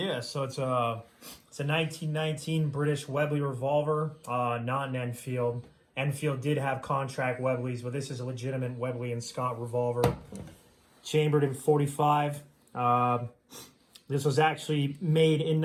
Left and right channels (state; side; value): identical; both; correlation 1.00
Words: so it's a 1919 British Webley revolver, not an Enfield. Enfield did have contract Webleys, but this is a legitimate Webley and Scott revolver, chambered in .45. This was actually made in